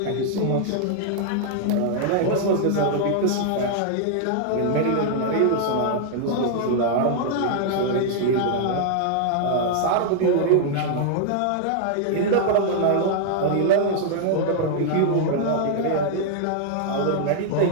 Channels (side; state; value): both; different; correlation -0.01